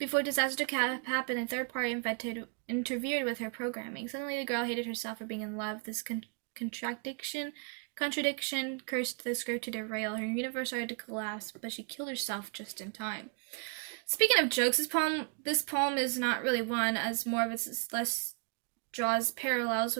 disaster happened, a third party interfered with her programming. Suddenly, the girl hated herself for being in love. This contradiction cursed the script to derail. Her universe started to collapse, but she killed herself just in time. Speaking of jokes, this poem is not really one, as more of its less draws parallels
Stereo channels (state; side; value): quieter; left; 37.6 dB